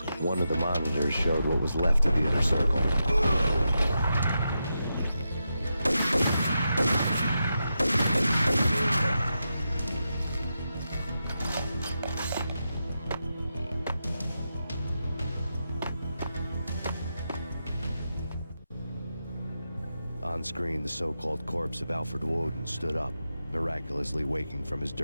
One of the monitors showed what was left of the Inner Circle. On screen, the so-called corpse of Alfred Woden stood up, miraculously waking from his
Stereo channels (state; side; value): inverted; both; correlation -0.88